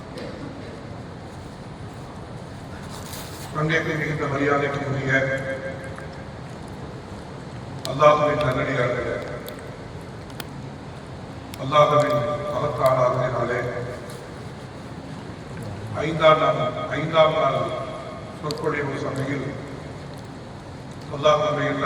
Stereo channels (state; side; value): identical; both; correlation 1.00